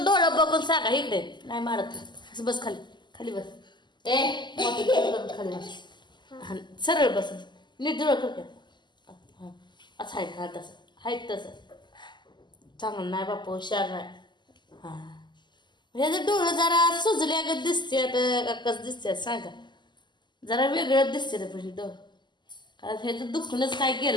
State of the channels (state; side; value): late; right; 0.21 ms